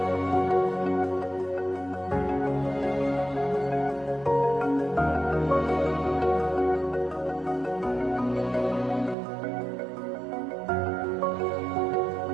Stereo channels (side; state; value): left; drops out; at 9.2 s